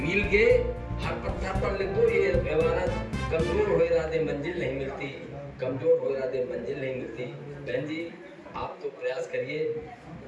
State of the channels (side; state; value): both; identical; correlation 1.00